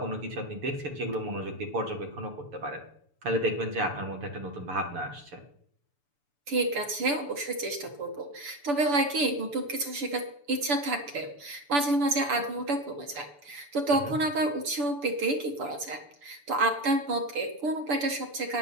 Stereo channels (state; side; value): late; left; 6.9 ms